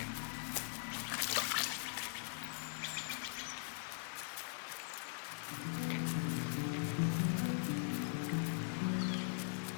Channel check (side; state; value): right; silent; digital silence